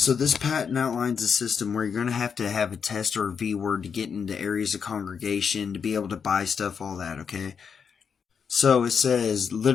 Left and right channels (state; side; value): quieter; right; 6.5 dB